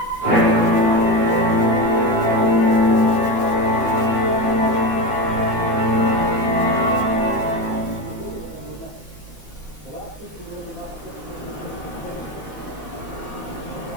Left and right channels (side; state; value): right; late; 3.2 ms